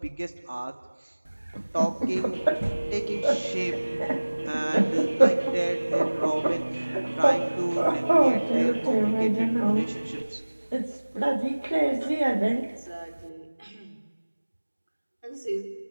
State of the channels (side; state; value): both; inverted; correlation -1.00